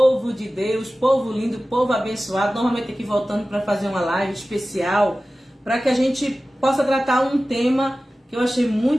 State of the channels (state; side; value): normal; both; correlation 0.96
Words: de Deus, povo lindo, povo abençoado. Normalmente aqui voltando para fazer uma live especial, para que a gente possa tratar um tema que eu achei